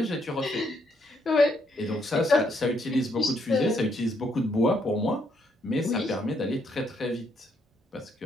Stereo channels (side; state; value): both; normal; correlation 0.73